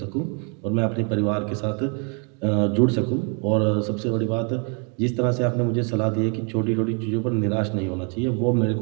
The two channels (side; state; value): left; quieter; 37.5 dB